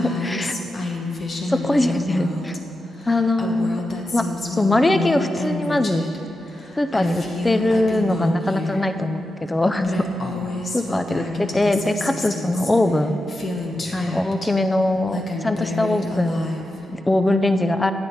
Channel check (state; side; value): normal; both; correlation 0.90